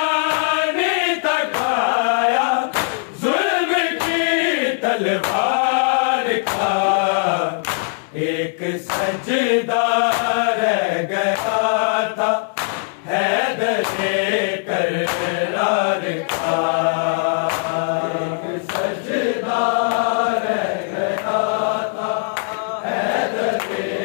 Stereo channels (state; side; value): silent; right; 66 dB below the other